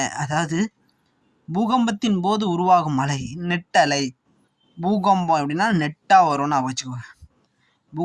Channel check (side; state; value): both; identical; correlation 1.00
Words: அதாவது பூகம்பத்தின் போது உருவாகும் அலை நெட்டலை. பூகம்பம் எப்படின்னா நெட்டாக வரும்னு ஞாபகம் வச்சுக்கோங்க.